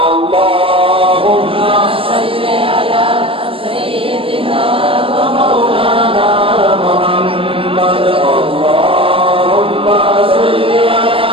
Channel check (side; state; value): left; late; 0.26 ms